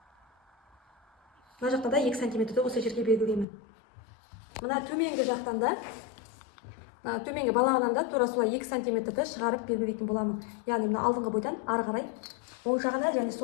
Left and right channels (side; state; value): right; drops out; at 3.5 s